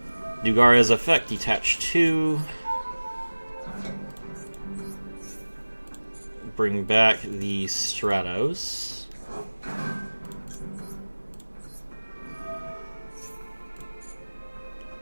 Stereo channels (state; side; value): inverted; both; correlation -1.00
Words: Dugara's effect, detach 2. Bring back the Stratos.